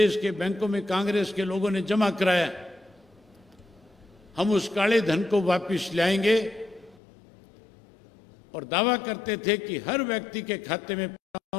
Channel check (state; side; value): drops out; right; at 7.0 s